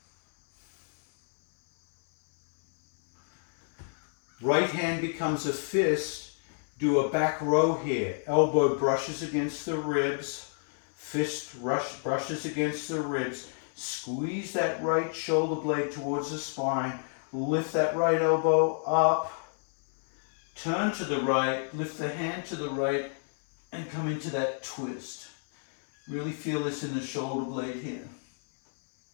Right hand becomes a fist. Do a back row here. Elbow brushes against the ribs. Fist brushes against the ribs. Squeeze that right shoulder blade towards the spine. Lift that right elbow up. Turn to the right. Lift the hand to the right and come into that twist. Really feel this in the shoulder blade here.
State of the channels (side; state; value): right; silent; 58 dB below the other